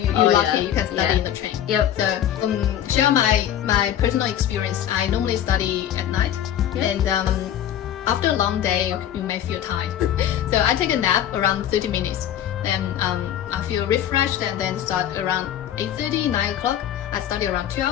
So you're lucky. You can study in the train. So share my personal experience. I normally study at night, and after a long day, you may feel tired. So I take a nap around 30 minutes. Then I feel refreshed, and then start around 8:30, 9 o'clock. I study around 2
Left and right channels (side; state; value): right; quieter; 10.7 dB